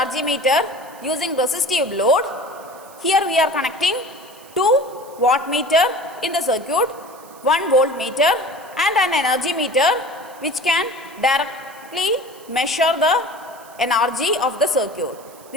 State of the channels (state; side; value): noise; right; hiss, 23 dB below the sound